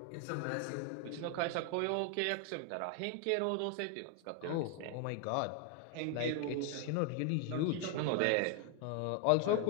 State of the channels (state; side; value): different; both; correlation 0.00